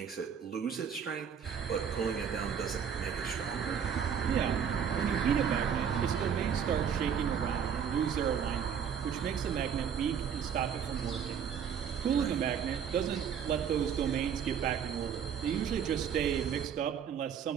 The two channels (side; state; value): left; quieter; 7.7 dB